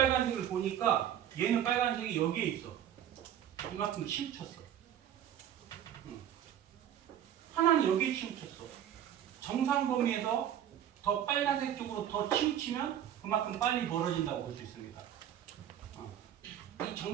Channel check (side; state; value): left; quieter; 10.5 dB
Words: 보니까 얘는 빨간색이 여기에 있어. 이만큼 치우쳤어. 하나는 여기에 치우쳤어. 정상 범위에서 더 빨간색 쪽으로 더 치우치면 그만큼 빨리 멀어진다고 볼 수 있습니다. 이